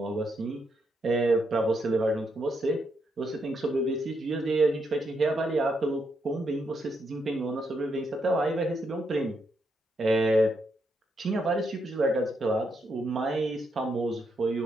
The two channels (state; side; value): normal; both; correlation 0.79